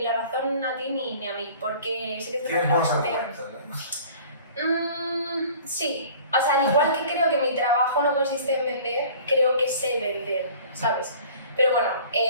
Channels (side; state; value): both; inverted; correlation -0.47